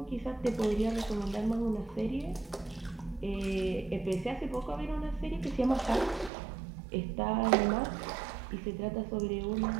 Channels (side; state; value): left; drops out; at 6.3 s